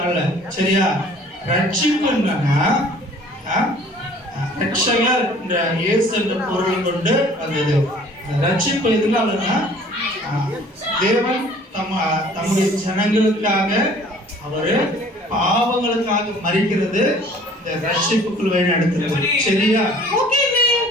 சரியா ரட்சிப்பு என்னன்னா ரட்சகர் என்ற இயேசு என்ற பொருள் கொண்டு வந்தது ரட்சிப்பு எதுனாலன்னா தேவன் தம்முடைய ஜனங்களுக்காக அவரு பாவங்களுக்காக மரிக்கிறது இந்த ரட்சிப்புக்குள் வழி நடத்துறது சரியா ஓகே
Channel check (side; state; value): both; normal; correlation 0.52